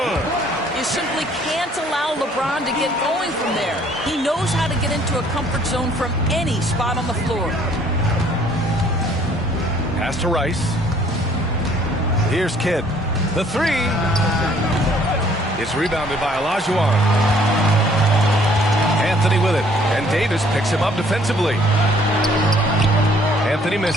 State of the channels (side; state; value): both; normal; correlation 0.60